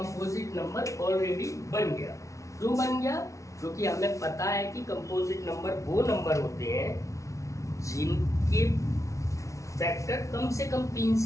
नंबर ऑलरेडी बन गया। क्यों बन गया? क्योंकि हमें पता है कि कंपोजिट नंबर वो नंबर होते हैं जिनके फैक्टर कम से कम 3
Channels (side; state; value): right; late; 0.15 ms